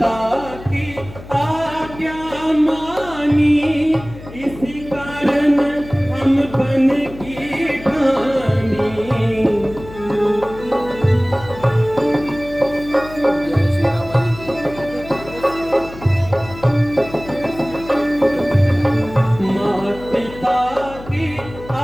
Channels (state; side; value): noise; left; hum, 16 dB below the sound